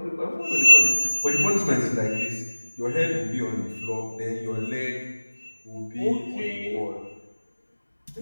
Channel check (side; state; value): both; inverted; correlation -1.00